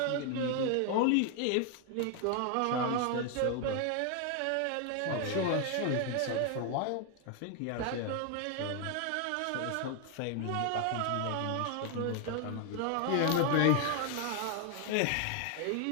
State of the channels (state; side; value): different; both; correlation 0.01